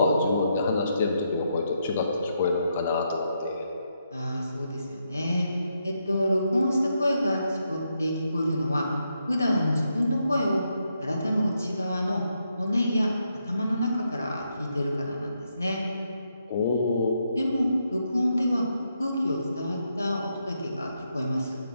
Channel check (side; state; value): both; inverted; correlation -0.80